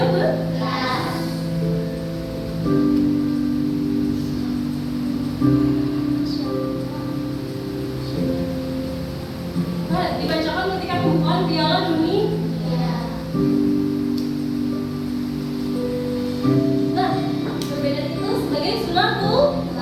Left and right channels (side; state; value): both; identical; correlation 1.00